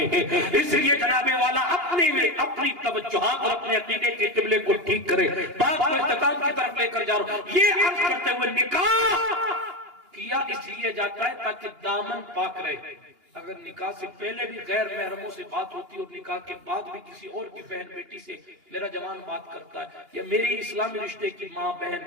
ہیں. اس لیے جناب والا اپنی توجہات اور اپنے عقیدے کے قبلے کو ٹھیک کرے. بات کو اختتام کی طرف لے کر جا رہا ہوں. یہ عرض کرتے ہوئے نکاح کیا اس لیے جاتا ہے تاکہ دامن پاک رہے. اگر نکاح سے پہلے بھی غیر محرموں سے بات ہوتی ہے اور نکاح کے بعد بھی کسی اور کی بہن بیٹی سے میرا جوان بات کرتا ہے یا میری اسلامی رشتے کی ماں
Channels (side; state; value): left; late; 2.8 ms